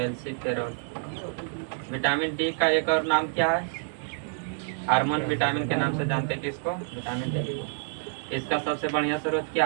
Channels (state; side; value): silent; left; 58 dB below the other